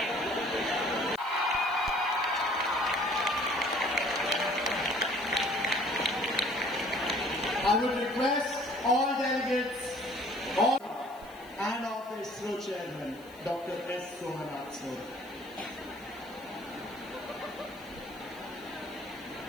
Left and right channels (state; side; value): noise; left; hiss, 25 dB below the sound